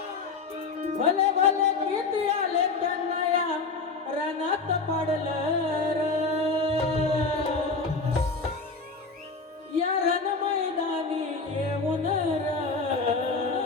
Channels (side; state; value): right; quieter; 4.2 dB